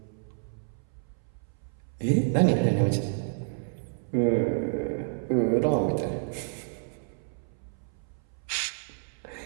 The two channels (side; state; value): left; silent; 58 dB below the other